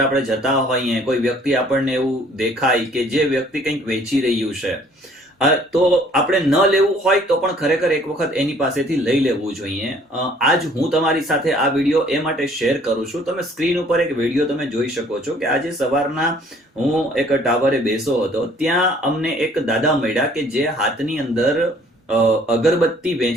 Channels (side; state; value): both; normal; correlation 0.58